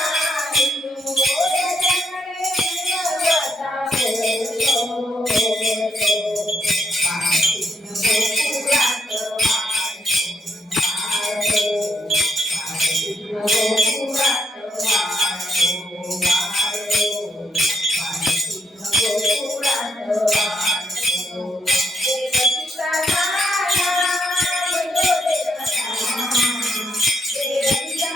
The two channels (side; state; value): both; normal; correlation 0.76